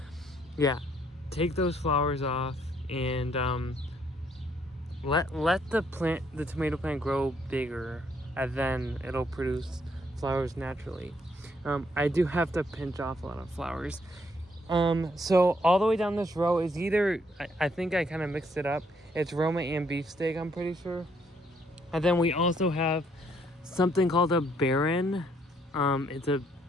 yeah, take those flowers off and let the tomato plant grow bigger, and then it'll produce flowers naturally. I do have to pinch off a lot of flowers. So all the way down this row is either, I think I kind of mixed it up. It's Roma and beefsteak, I'm pretty sure. And then we also have something called a Baron. It's a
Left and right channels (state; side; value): normal; both; correlation 0.70